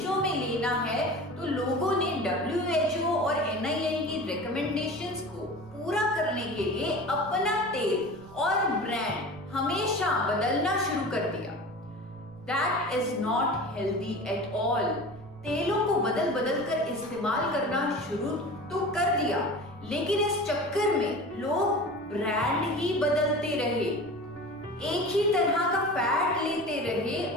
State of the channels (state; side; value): noise; right; rumble, 24 dB below the sound